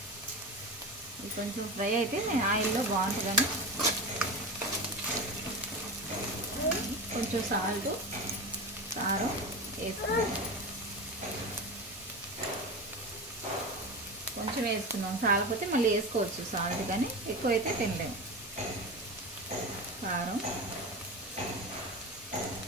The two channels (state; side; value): normal; both; correlation 0.24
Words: ఇది కొంచెం ఫ్రై అయితే నేను ఆయిల్లో బాగుంటుందని కొంచెం సాల్ట్, కారం వేసుకున్నాం. కొంచెం వేసుకున్నాం, చాలకపోతే మళ్ళీ వేసుకోవచ్చు సాల్ట్, కానీ ఎక్కువైతే తినలేము. కారం,